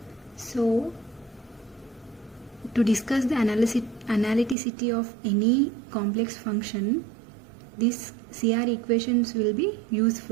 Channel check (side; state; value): left; drops out; at 4.5 s